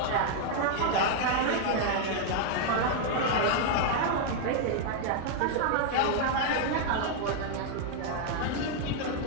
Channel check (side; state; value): both; different; correlation 0.00